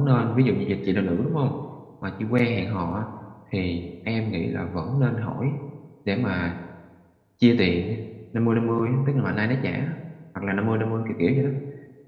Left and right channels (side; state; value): both; identical; correlation 1.00